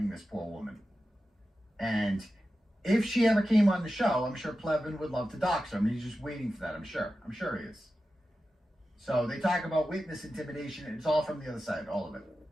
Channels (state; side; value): normal; both; correlation 0.92